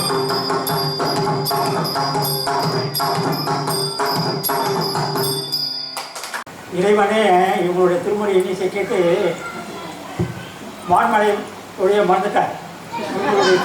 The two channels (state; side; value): identical; both; correlation 1.00